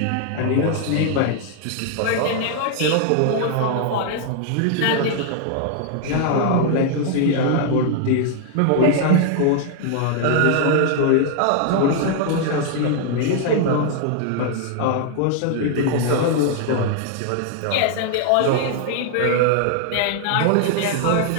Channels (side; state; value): both; different; correlation 0.00